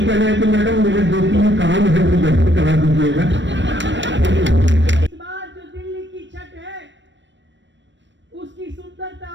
कहना है कि मैडम मेरे 2-3 काम है वो जल्दी करा दीजिएगा। इस बार जो दिल्ली की छठ है उसकी सुंदरता,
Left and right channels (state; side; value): late; left; 0.53 ms